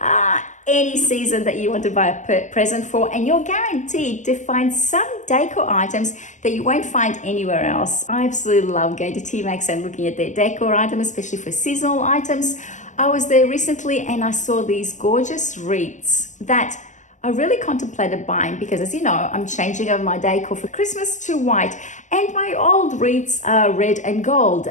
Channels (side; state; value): right; late; 0.35 ms